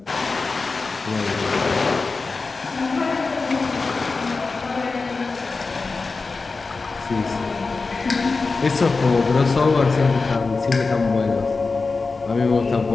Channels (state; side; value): quieter; right; 4.1 dB